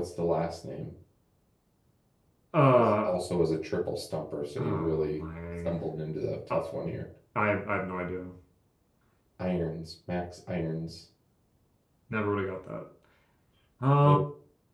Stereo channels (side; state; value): both; identical; correlation 1.00